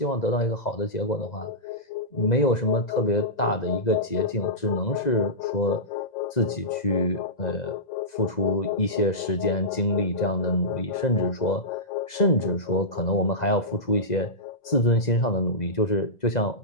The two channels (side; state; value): right; late; 2.0 ms